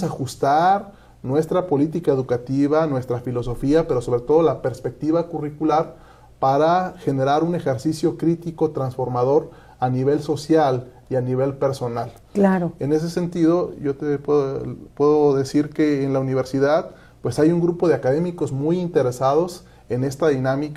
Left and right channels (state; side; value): identical; both; correlation 1.00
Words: ajustar nuestra política educativa, nuestra filosofía, pero sobre todo la perspectiva curricular para generar un ejercicio crítico transformador a nivel social y a nivel personal. Claro. En ese sentido, yo te puedo decir que en la universidad pues hay un grupo de académicos muy interesados en esta